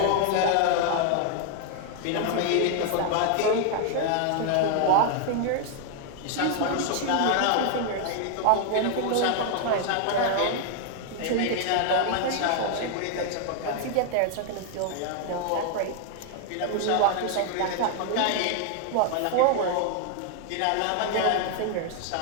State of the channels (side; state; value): both; different; correlation 0.00